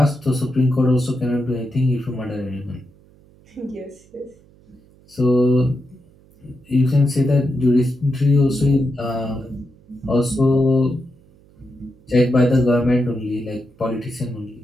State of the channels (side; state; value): right; noise; hum, 28 dB below the sound